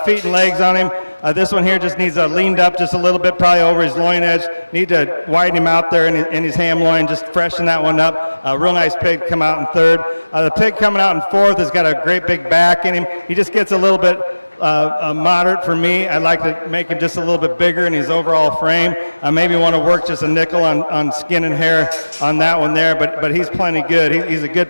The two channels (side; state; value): both; inverted; correlation -1.00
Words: feet and legs on him. This one here just needs leaned up just a little bit, probably over his loin edge. Need to widen him out there in his ham loin, just freshen that one up. A real nice pig come out in third. The pig coming out in fourth has got a great big back in him. He just gets a little bit moderate for me. I'd like to make him just a little bit bigger in his overall frame. I maybe want to work just a nickel on skin and hair on that one there, but he's plenty good. He's a good